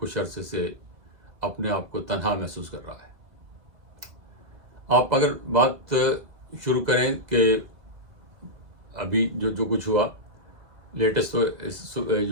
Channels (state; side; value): late; left; 2.2 ms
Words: عرصے سے اپنے آپ کو تنہا محسوس کر رہا ہے؟ آپ اگر بات شروع کریں کہ ابھی جو کچھ ہوا لیٹسٹ،